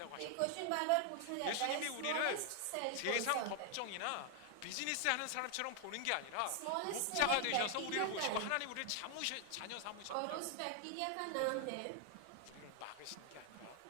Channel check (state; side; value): different; both; correlation 0.00